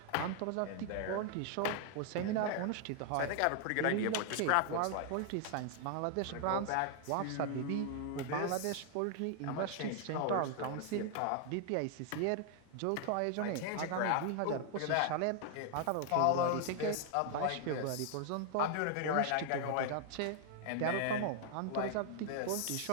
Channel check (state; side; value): different; both; correlation 0.00